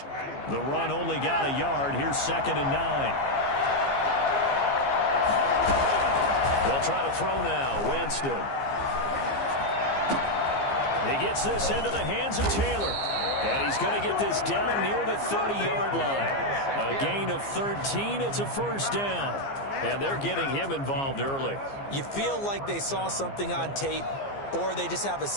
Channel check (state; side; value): late; right; 15 ms